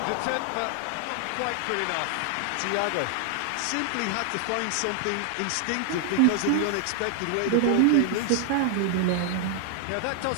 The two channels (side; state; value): both; different; correlation 0.00